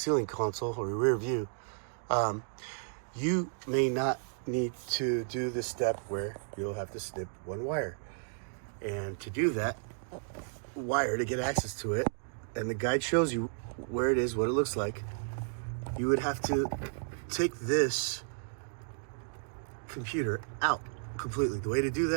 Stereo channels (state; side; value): silent; left; digital silence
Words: console or your rear view, you may not need to do the step where you'll have to snip one wire. And to do that wire, to get access to it, and the guide shows you where it is, what it looks like, you would have to take this computer out completely. The way to do